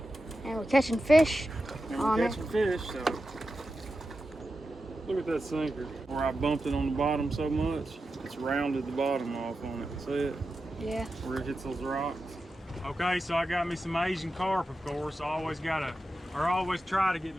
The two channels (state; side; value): normal; both; correlation 0.91